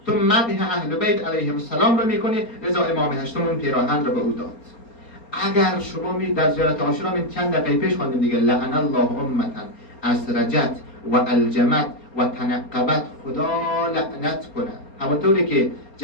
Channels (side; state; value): right; late; 4.3 ms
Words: تو مدح اهل بیت علیهم السلام را میکنی. لذا امام هشتم اون پیراهن را به او داد. اگر شما می در زیارت عاشورا من چند دقیقه پیش خواندیم دیگه، لعن الله امتا اسرجت و الجمت و تنقبت، خدا لعنت کنه. همونطوری که